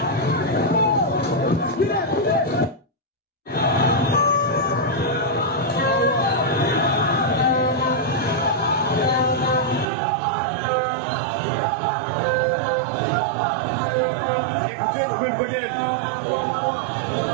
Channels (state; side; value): drops out; left; at 9.9 s